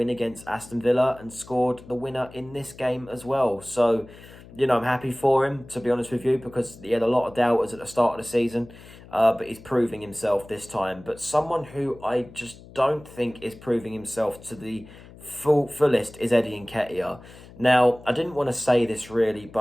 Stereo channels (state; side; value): noise; left; hum, 20 dB below the sound